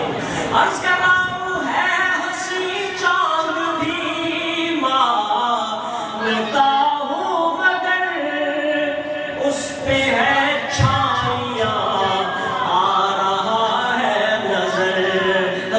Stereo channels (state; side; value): identical; both; correlation 1.00